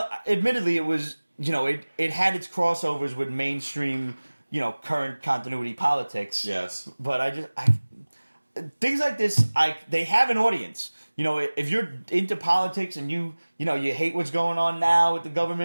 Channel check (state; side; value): inverted; both; correlation -1.00